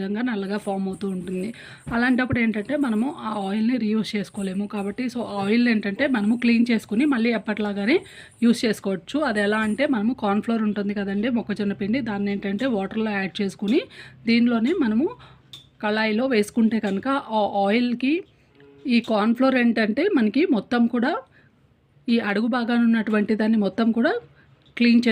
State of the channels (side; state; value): both; identical; correlation 1.00